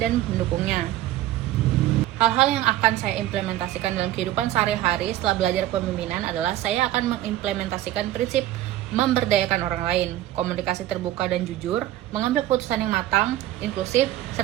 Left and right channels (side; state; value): left; quieter; 14.1 dB